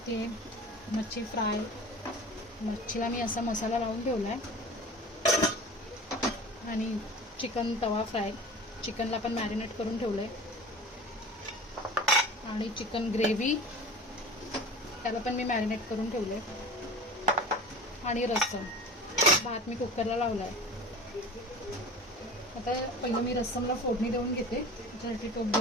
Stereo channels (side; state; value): both; normal; correlation 0.38